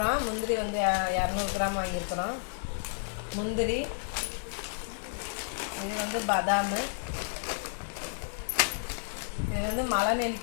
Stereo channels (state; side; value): silent; right; digital silence